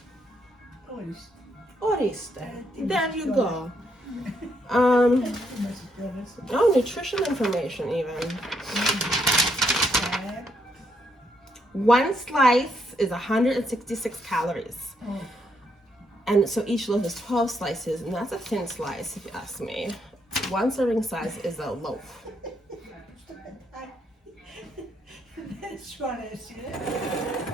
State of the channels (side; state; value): both; normal; correlation 0.75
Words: Oriste. There you go. Oh, nutrition information even. 1 slice is 166 calories. And so each loaf is 12 slices, and that's a thin slice if you ask me. 1 serving size is a loaf.